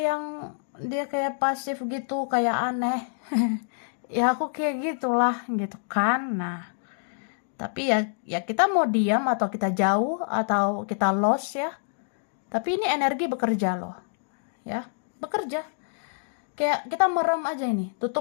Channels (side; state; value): right; silent; digital silence